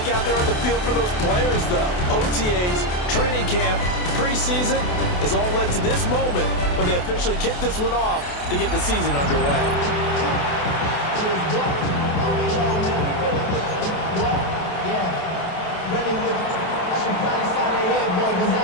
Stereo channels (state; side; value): late; right; 28 ms